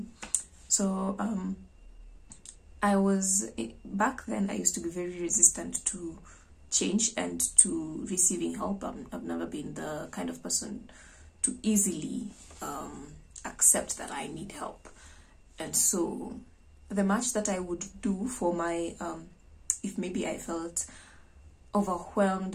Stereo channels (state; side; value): identical; both; correlation 1.00